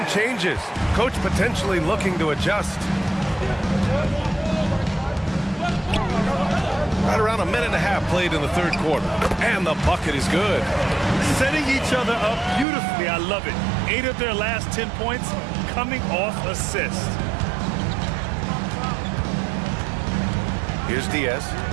changes. Coach potentially looking to adjust. Right around a minute and a half played in the third quarter. And the bucket is good. Setting each other up beautifully. I love it. 8 of their last 10 points coming off assists. Here's Diaz.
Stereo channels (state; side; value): drops out; left; at 12.7 s